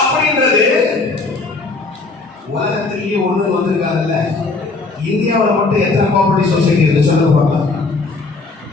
சொன்னாங்கல்ல, இந்தியாவில் மட்டும் எத்தனை கோஆபரேட்டிவ் சொசைட்டி இருக்கு சொல்லுங்க பார்க்கலாம்.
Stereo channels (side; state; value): right; quieter; 3.7 dB